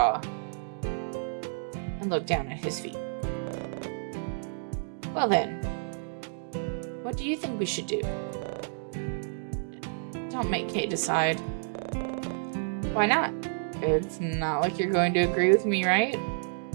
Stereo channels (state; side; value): silent; left; digital silence